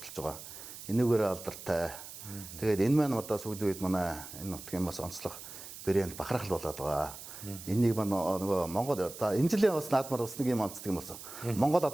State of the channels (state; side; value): noise; right; hiss, 13 dB below the sound